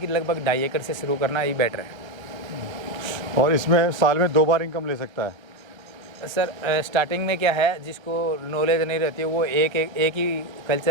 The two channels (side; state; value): left; late; 1.3 ms